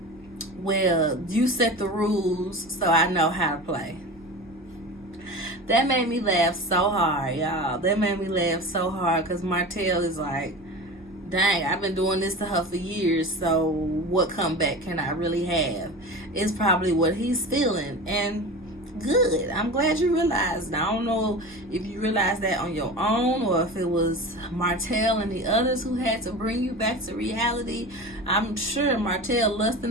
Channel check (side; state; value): right; noise; hum, 27 dB below the sound